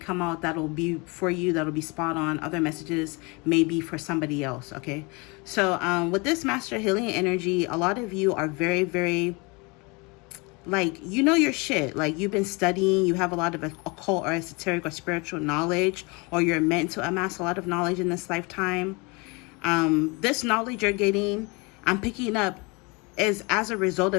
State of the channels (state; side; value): quieter; right; 28.4 dB